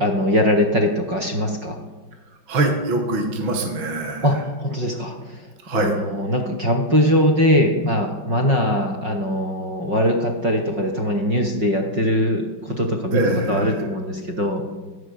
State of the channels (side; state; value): left; late; 5.5 ms